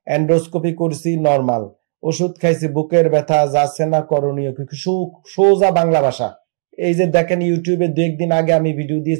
এন্ডোস্কোপি করেছি, নর্মাল, ওষুধ খাইছি, বুকের ব্যথা যাচ্ছে না, করণীয় কি? সোজা বাংলা ভাষা। এই যে দেখেন ইউটিউবে 2 দিন আগে আমি ভিডিও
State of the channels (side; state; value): left; silent; digital silence